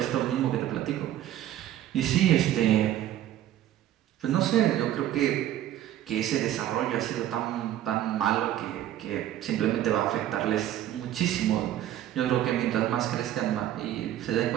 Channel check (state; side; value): quieter; left; 12.4 dB